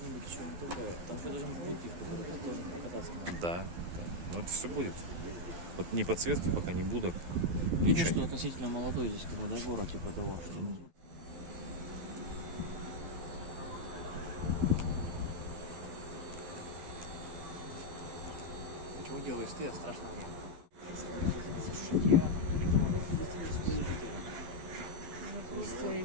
Да, да. Но это все будет. Вот ни подсветки пока не будет. Видишь, Ничего что не. относительно молодой здесь, как бы, да, город, типа того, что... Почему делаешь ты, а страшно мне? Из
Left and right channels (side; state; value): left; late; 12 ms